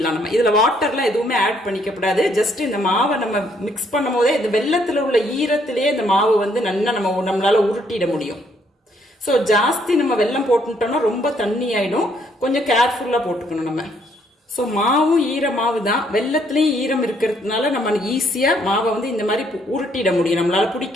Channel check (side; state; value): both; normal; correlation 0.69